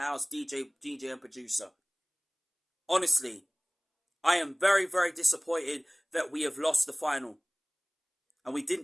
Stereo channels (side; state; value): both; identical; correlation 1.00